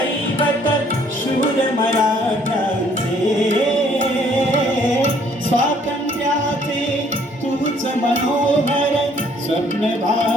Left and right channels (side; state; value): both; normal; correlation 0.62